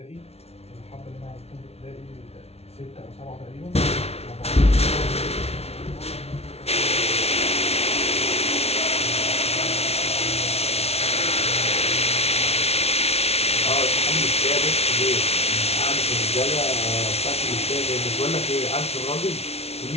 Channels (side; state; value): right; late; 0.30 ms